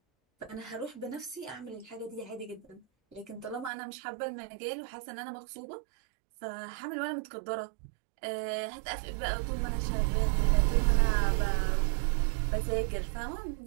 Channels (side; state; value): left; drops out; at 3.7 s